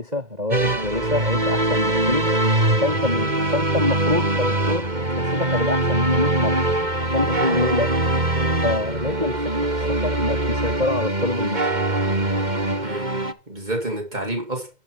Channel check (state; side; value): late; left; 2.1 ms